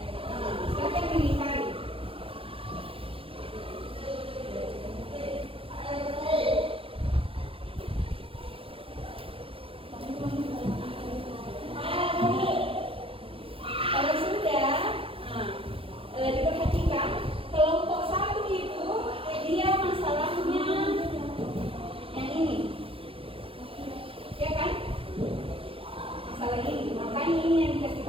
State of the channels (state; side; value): late; left; 0.27 ms